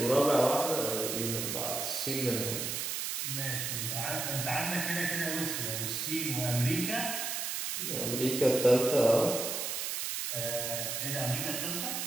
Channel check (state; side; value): noise; right; hiss, 2 dB below the sound